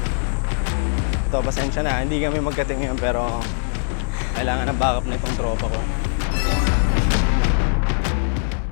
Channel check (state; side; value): silent; right; 65 dB below the other